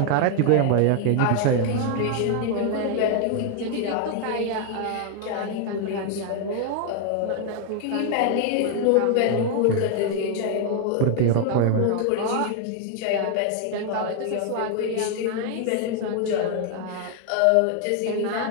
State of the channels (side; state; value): both; different; correlation 0.00